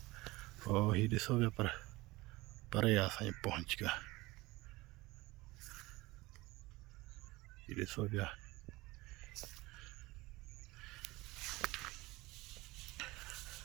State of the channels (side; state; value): left; quieter; 20.9 dB